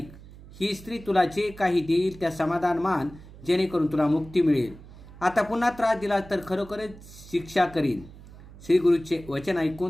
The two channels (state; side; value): noise; right; hum, 18 dB below the sound